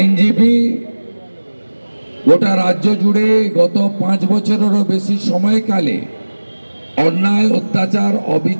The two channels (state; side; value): inverted; both; correlation -1.00